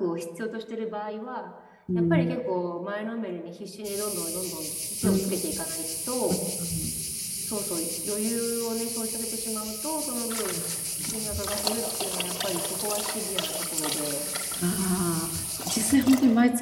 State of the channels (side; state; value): both; identical; correlation 1.00